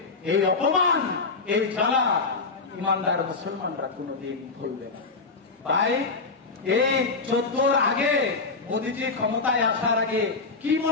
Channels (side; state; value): right; quieter; 4.1 dB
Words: এই অপমান, এই জ্বালা ইমানদার মুসলমানরা কোনদিন ভুলবে না। ভাই, এই 14 আগে মোদীজি ক্ষমতায় আসার আগে কি